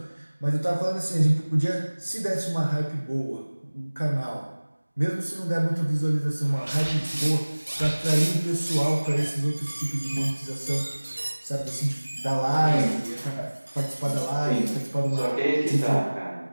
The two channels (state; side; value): inverted; both; correlation -1.00